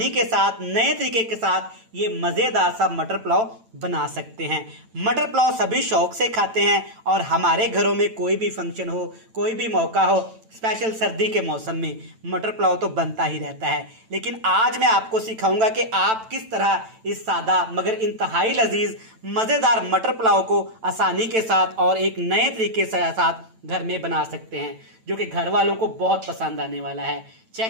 के साथ नए तरीके के साथ ये मज़ेदार सा मटर पुलाव बना सकते हैं। मटर पुलाव सभी शौक से खाते हैं और हमारे घरों में कोई भी फंक्शन हो, कोई भी मौका हो, स्पेशल सर्दी के मौसम में मटर पुलाव तो बनता ही रहता है। लेकिन आज मैं आपको सिखाऊंगा कि आप किस तरह इस सादा मगर इंतहाई लजीज मज़ेदार मटर पुलाव को आसानी के साथ और एक नए तरीके से साथ घर में बना सकते हैं, जो कि घर वालों को बहुत पसंद आने वाला है।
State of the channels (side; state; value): left; late; 9.0 ms